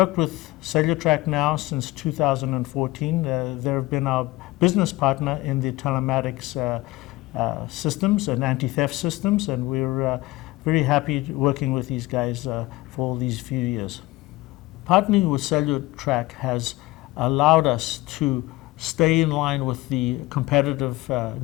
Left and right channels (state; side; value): quieter; right; 19.9 dB